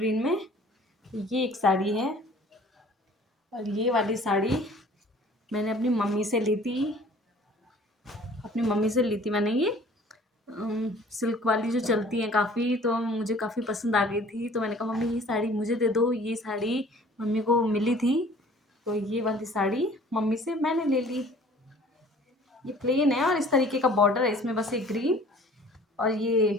में। ये एक साड़ी है। और ये वाली साड़ी मैंने अपनी मम्मी से ली थी, अपनी मम्मी से ली थी मैंने ये। सिल्क वाली जो चलती हैं काफ़ी, तो मुझे काफ़ी पसंद आ गई थी। तो मैंने कहा मम्मी ये साड़ी मुझे दे दो, ये साड़ी मम्मी को मिली थी। तो ये वाली साड़ी मम्मी से मैंने ले ली। ये प्लेन है और इस तरीके का बॉर्डर है इसमें, बस एक ग्रीन और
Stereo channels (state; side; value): normal; both; correlation 0.51